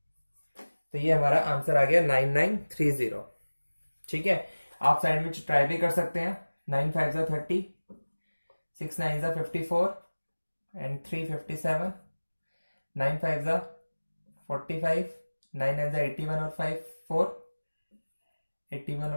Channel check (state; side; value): inverted; both; correlation -1.00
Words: तो ये हमारा आंसर आ गया 9930। ठीक है, आप साइड में ट्राई भी कर सकते हैं। 9 5 30, 6 9 54 एंड 3 57, 9 5 45, 9 9 81 और 5 4, 81